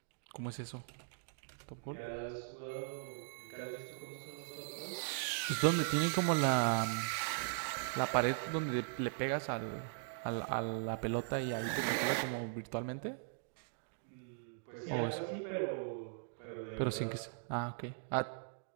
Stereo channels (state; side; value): silent; left; digital silence